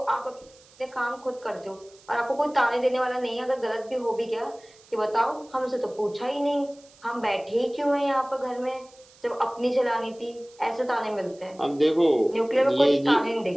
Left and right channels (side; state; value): right; noise; hiss, 27 dB below the sound